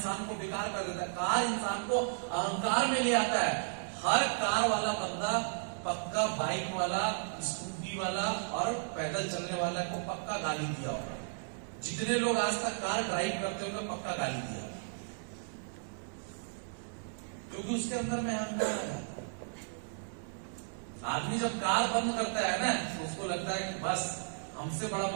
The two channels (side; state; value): left; silent; digital silence